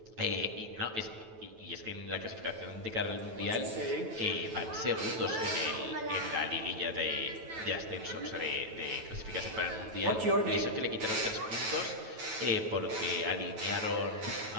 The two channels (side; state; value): left; late; 9.2 ms